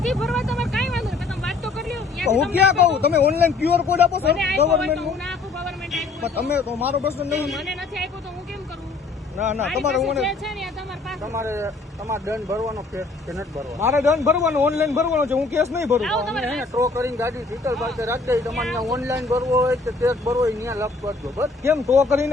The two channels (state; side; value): quieter; right; 3.8 dB